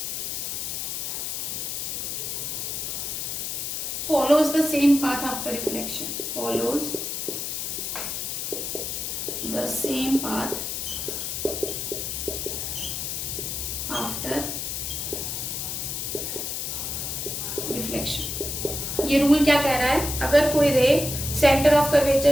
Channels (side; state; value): left; noise; hiss, 3 dB below the sound